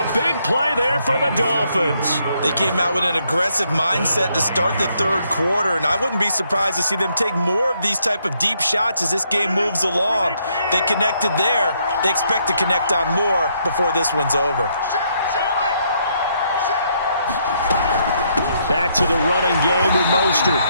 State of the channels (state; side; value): inverted; both; correlation -0.73